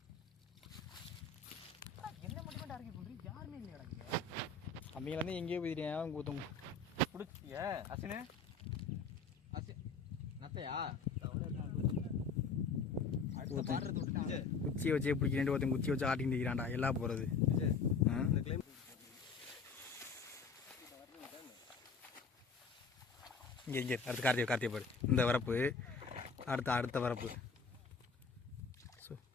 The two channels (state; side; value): quieter; right; 4.8 dB